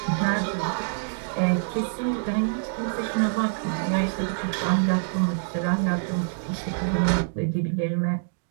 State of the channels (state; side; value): silent; left; digital silence